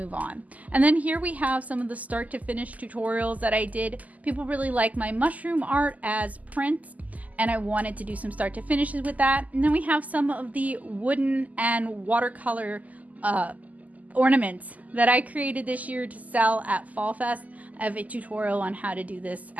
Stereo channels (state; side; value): late; left; 0.077 ms